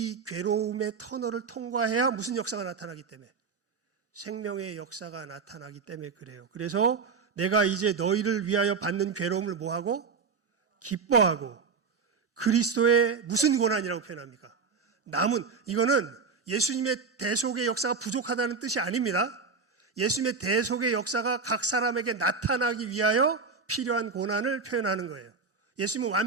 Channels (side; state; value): left; quieter; 5.0 dB